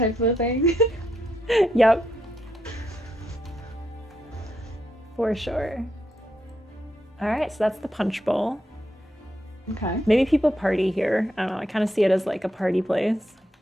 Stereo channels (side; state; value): both; normal; correlation 0.80